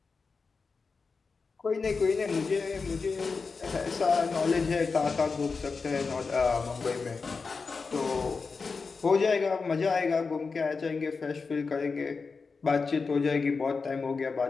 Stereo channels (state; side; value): quieter; right; 4.6 dB